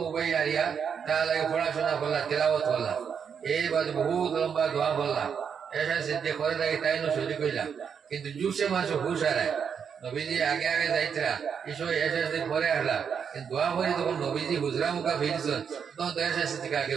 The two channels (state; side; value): quieter; left; 7.1 dB